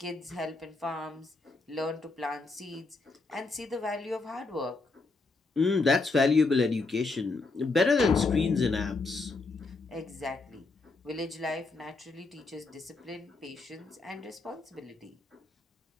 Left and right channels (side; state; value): right; quieter; 3.6 dB